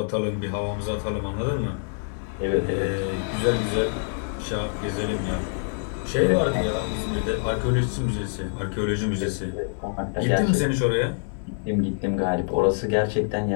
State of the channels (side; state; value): right; silent; digital silence